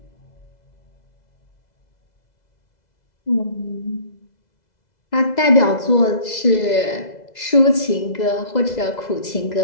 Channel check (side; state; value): right; late; 2.0 ms